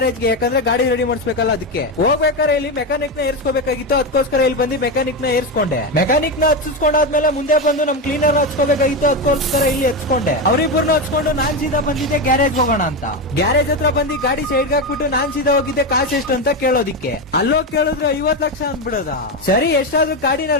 ಯಾಕಂದ್ರೆ ಗಾಡಿ ರೆಡಿ ಮಾಡಿಸ್ಬೇಕಲ್ಲ, ಅದಕ್ಕೆ ಹೋಗ್ಬೇಕಾದ್ರೆ ಇಲ್ಲಿ ಮೆಕ್ಯಾನಿಕ್ ನ ಏರ್ಸ್ಕೋಬೇಕಾಗಿತ್ತು. ಅದಕ್ಕೋಸ್ಕರ ಇಲ್ಲಿ ಬಂದು ಮೆಕ್ಯಾನಿಕ್ ನ ಏರ್ಸ್ಕೊಂಡೆ. ಮೆಕ್ಯಾನಿಕ್ ನ ಹಚ್ಚಿಸ್ಕೊಂಡಾದ್ಮೇಲೆ ಮುಂದೆ ಬಂದು ನಮ್ ಕ್ಲೀನರ್ ಹಚ್ಕೋಬೇಕಾಗಿತ್ತು. ಅದಕ್ಕೋಸ್ಕರ ಇಲ್ಲಿ ಹಚ್ಕೊಂಡೆ. ಅವರಿಬ್ಬರನ್ನ ಹಚ್ಕೊಂಡು ನಾನ್ ಸೀದಾ ಬಂದಿದ್ದೆ ಗ್ಯಾರೇಜ್ ಹೋಗೋಣ ಅಂತ. ಗ್ಯಾರೇಜ್ ಹತ್ರ ಬಂದು ಗಾಡಿ ಸೈಡ್ ಹಾಕ್ಬಿಟ್ಟು ನಾನ್ ಸೀದಾ ಹೋಗಿದ್ದೆ ಕಾಸು ಎಷ್ಟು ಅಂತ ಕೇಳೋದಿಕ್ಕೆ. ಅಲ್ಲೋಗಿ ಕೇಳಿದ್ರೆ 50 ಲಕ್ಷ ಅಂದ್ಬಿಡದ. ಸರಿ ಎಷ್ಟಾದ್ರೂ ಗಾಡಿನ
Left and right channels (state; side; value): normal; both; correlation 0.13